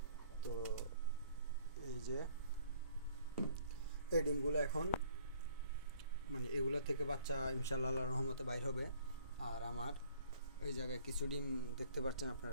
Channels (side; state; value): both; inverted; correlation -0.58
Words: তো এই যে এই ডিমগুলো এখন মানে এগুলো থেকে বাচ্চা ইনশাল্লাহ আল্লাহর রহমতে বাইর হবে। আর আমার এই জায়গায় কিছু ডিম দেখতে পাচ্ছেন